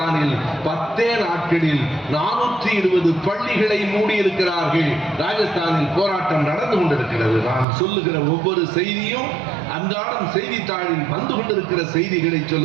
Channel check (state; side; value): drops out; left; at 7.7 s